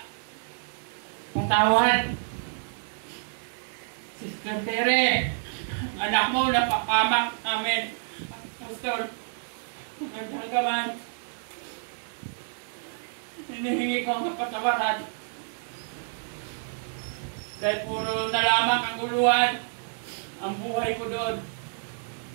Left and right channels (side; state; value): left; silent; digital silence